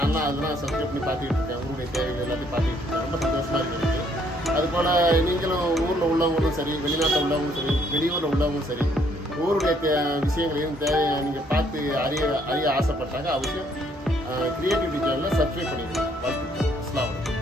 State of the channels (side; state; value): both; normal; correlation 0.67